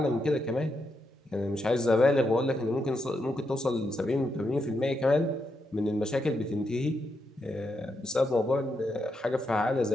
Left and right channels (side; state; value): both; normal; correlation 0.82